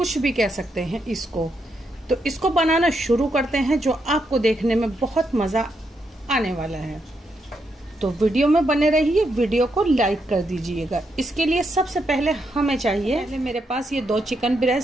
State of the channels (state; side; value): normal; both; correlation 0.80